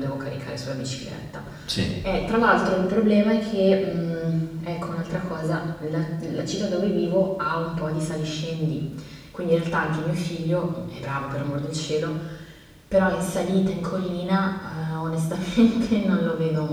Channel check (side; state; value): both; identical; correlation 1.00